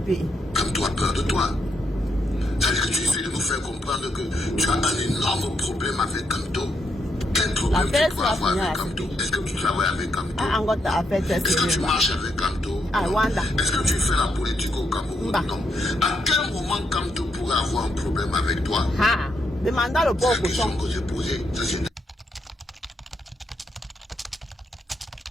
Kamto a peur de toi. Ça veut dire que tu essaies de nous faire comprendre que tu as un énorme problème avec Kamto. Quel problème tu dois avoir avec Kamto? Est-ce que tu travailles avec Kamto? Est-ce que tu marches avec Kamto? Est-ce que tu fais la politique au Cameroun? Non. À quel moment Kamto pourrait avoir un problème avec toi? Demandez le pauvre question que j'ai posée.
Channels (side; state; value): both; normal; correlation 0.79